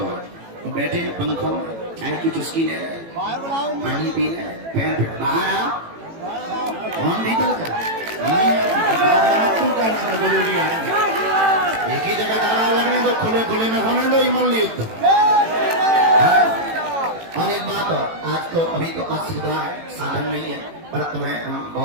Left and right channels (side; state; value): left; late; 18 ms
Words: तो बैठे हैं पंखों में, चाय की चुस्की ले रहे, पानी पी रहे, पैर पे बाहर आओ, कौन भीतर का जरूरी है। एक ही जगह दारा लगने दो, खुले खुले में होने दो, इमल युद्ध। और एक बात और, आज तो अभी तो असुविधा है, साधन नहीं है, पर तुम्हें हम